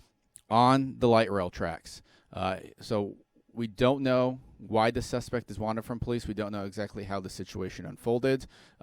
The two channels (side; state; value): both; identical; correlation 1.00